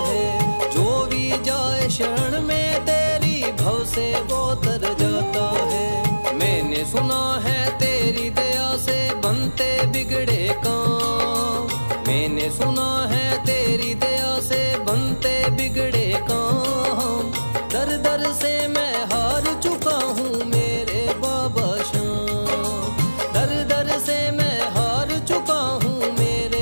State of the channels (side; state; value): both; inverted; correlation -1.00